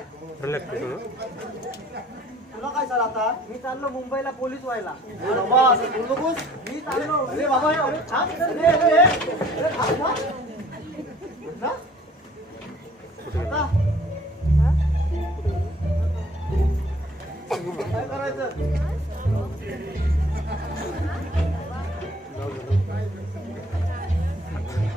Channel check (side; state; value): both; normal; correlation 0.55